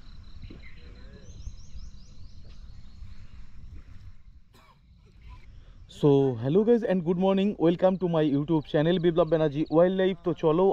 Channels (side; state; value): both; identical; correlation 1.00